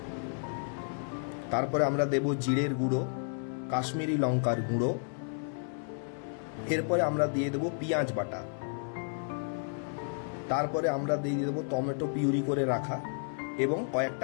তারপরে আমরা দেব জিরের গুঁড়ো, কাশ্মীরি লঙ্কার গুঁড়ো, এরপরে আমরা দিয়ে দেব পেঁয়াজ বাটা, তারপরে আমরা দিয়ে দেবো টমেটো পিউরি করে রাখা এবং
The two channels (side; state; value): right; silent; 56 dB below the other